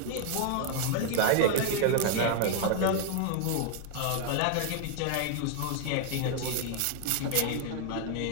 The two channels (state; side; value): different; both; correlation 0.00